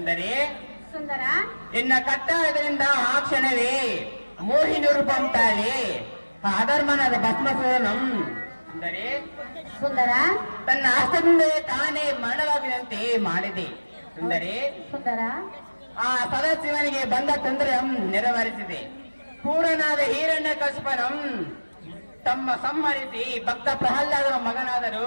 ಸುಂದರ ಇನ್ನ ಕಟ್ಟಾಯದಿಂದ ಆ ಕ್ಷಣವೇ ಮೋಹಿನಿ ರೂಪಂ ತಾಳಿ ಆ ಅಧರ್ಮನಾದ ಭಸ್ಮಾಸುರನಂ ಸುಂದರಿ ಸುಂದರ ತನ್ನ ಹಸ್ತದಿಂದ ತಾನೇ ಮರಣವಾಗುವಂತೆ ಮಾಡಿದೆ ಸುಂದರಿ. ಸುಂದರ ಆ ಸದಾಶಿವನಿಗೆ ಬಂದ ತೊಂದರೆ ನೆರವೇರಿಸಿದೆ. ಪೂರ್ಣನಾದ ಹಿರಣ್ಯ ಕಸ್ಪನಂ ತಮ್ಮ ಸಂಹರಿಸಿ ಭಕ್ತ ಪ್ರಹ್ಲಾದನ ಮಗನಾದರು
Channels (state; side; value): inverted; both; correlation -1.00